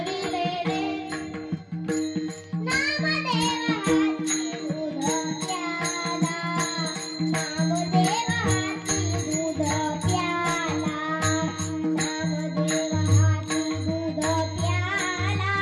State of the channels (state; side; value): identical; both; correlation 1.00